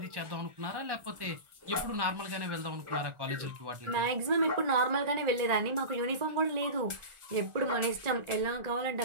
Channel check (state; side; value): late; left; 1.4 ms